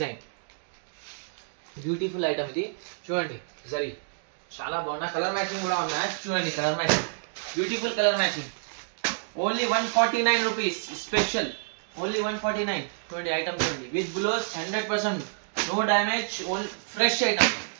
beautiful item ఇది చూడండి జరీ చాలా బాగున్నా colour matching కూడా ఉన్నాయి చూడండి colour matching beautiful colour matching only 149 rupees special only 149 చూడండి ఐటమ్ చూడండి with blouse 100% no damage all fresh item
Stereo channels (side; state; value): left; silent; digital silence